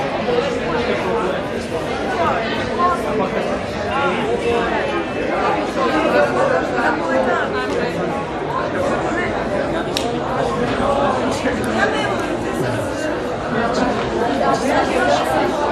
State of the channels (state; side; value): identical; both; correlation 1.00